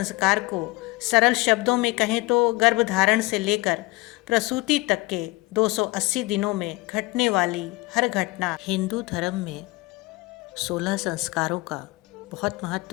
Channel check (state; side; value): quieter; right; 21.9 dB